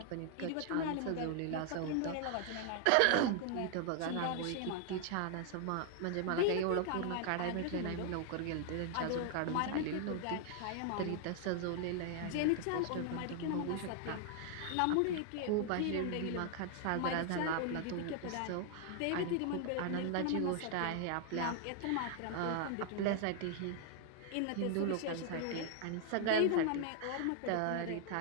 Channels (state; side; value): different; both; correlation 0.00